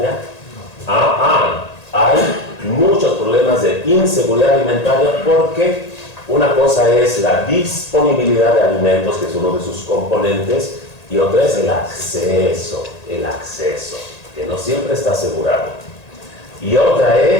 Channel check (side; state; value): right; late; 1.8 ms